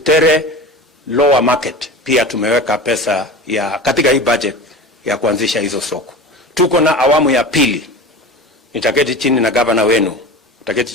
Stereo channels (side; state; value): both; normal; correlation 0.32